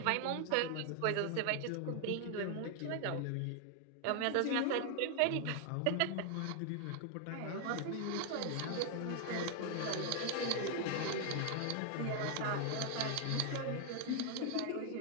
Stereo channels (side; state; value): both; different; correlation 0.00